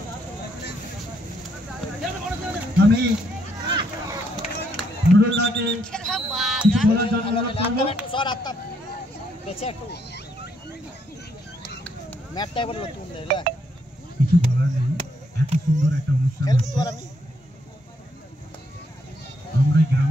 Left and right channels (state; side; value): normal; both; correlation 0.73